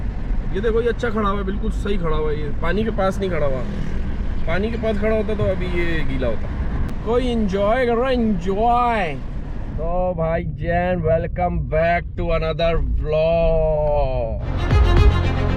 ये देखो, ये अच्छा खड़ा हुआ है, बिल्कुल सही खड़ा हुआ है। ये पानी के पास नहीं खड़ा हुआ, पानी के पास खड़ा होता तो अभी ये गीला होता। कोई एंजॉय कर रहा है, एंजॉय। तो भाई जैन, welcome back to another vlog.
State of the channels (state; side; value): identical; both; correlation 1.00